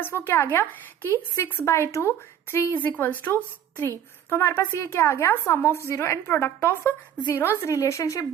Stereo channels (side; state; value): left; quieter; 9.6 dB